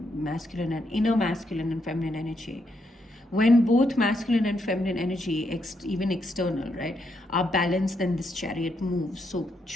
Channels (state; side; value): normal; both; correlation 0.79